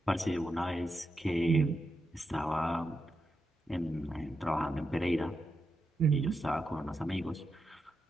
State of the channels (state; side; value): normal; both; correlation 0.86